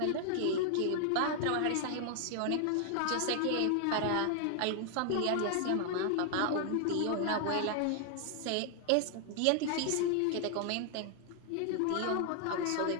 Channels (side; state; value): both; different; correlation 0.00